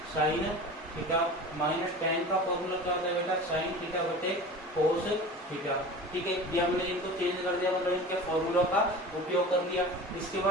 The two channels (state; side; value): normal; both; correlation 0.36